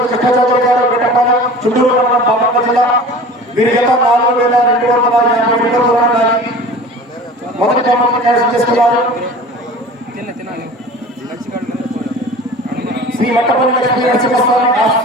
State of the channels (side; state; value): both; normal; correlation 0.40